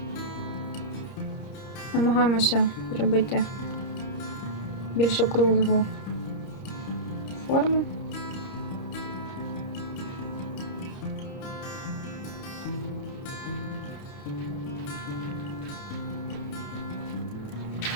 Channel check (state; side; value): late; right; 30 ms